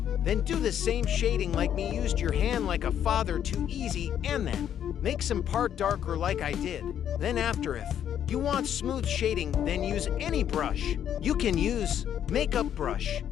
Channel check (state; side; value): quieter; right; 9.7 dB